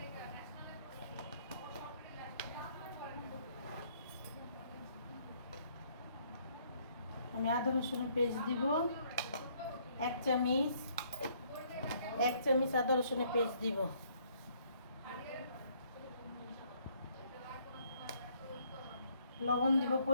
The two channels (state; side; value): inverted; both; correlation -0.66